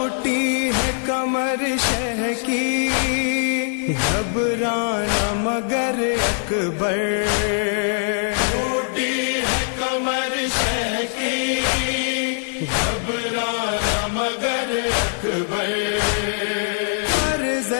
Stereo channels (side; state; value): right; silent; digital silence